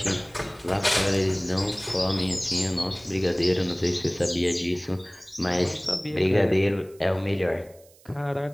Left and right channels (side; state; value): right; noise; hiss, 27 dB below the sound